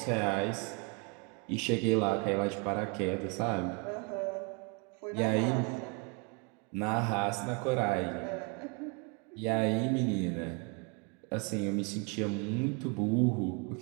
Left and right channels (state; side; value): quieter; left; 34.7 dB